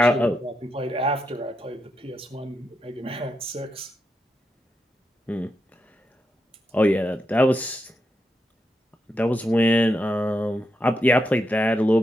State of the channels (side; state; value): both; normal; correlation 0.84